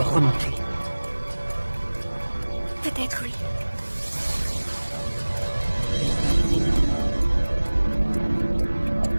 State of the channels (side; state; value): both; inverted; correlation -1.00